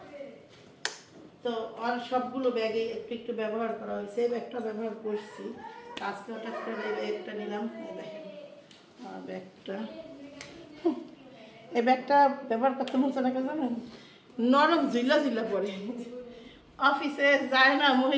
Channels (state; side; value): identical; both; correlation 1.00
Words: তো আর সবগুলো ব্যাগে একটু একটু ব্যবহার করা হয়েছে। এই ব্যাগটা ব্যবহার করছি আজকে, হঠাৎ করে এই ব্যাগটা নিলাম। ব্যাগটা এই ব্যাগটা ব্যবহার করতে মন চায় না, জানেন, নরম ঝিলা ঝিলা পড়ে। অফিসে যায় না